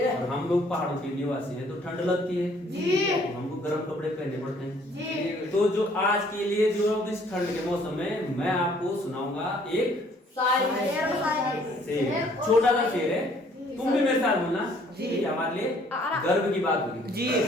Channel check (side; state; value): both; normal; correlation 0.61